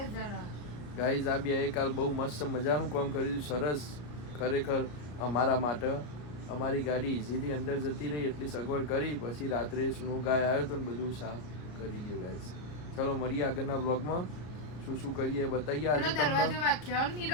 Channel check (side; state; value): right; late; 33 ms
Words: જણા. ગાઈઝ આ બે કાલ બહુ મસ્ત મજાનું કામ કર્યું. સરસ ખરેખર અમારા માટે. અમારી ગાડી ઇઝીલી અંદર જતી રહી એટલી સગવડ કરી. પછી રાત્રે સ્નો ગાય આવ્યો તો ને બધું સાફ કરી ગયું. ગાઈઝ ચલો મળીએ આગળના બ્લોગમાં. શું શું કરીએ બતાવીએ આજે તમને. દરવાજો વાખ્યો